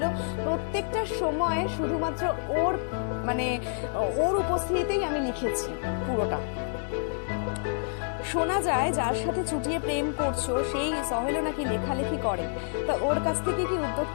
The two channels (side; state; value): right; silent; digital silence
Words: প্রত্যেকটা সময় শুধুমাত্র ওর উপস্থিতিতেই আমি লিখেছি পুরোটা। শোনা যায় যার সাথে চুটিয়ে প্রেম করছো সেই সহেলও নাকি লেখালেখি করে, তো ওর কাছ থেকে কি